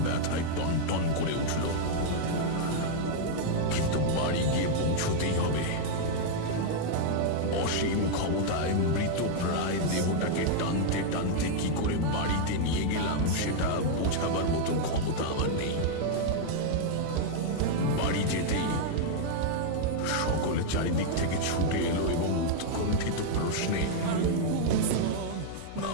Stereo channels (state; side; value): different; both; correlation -0.01